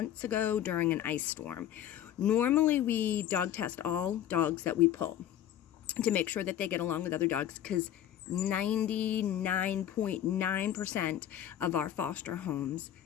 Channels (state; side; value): quieter; right; 11.1 dB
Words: ago during an ice storm. Normally we dog test all dogs that we pull to make sure that they get along with other dogs because 99.9% of our foster homes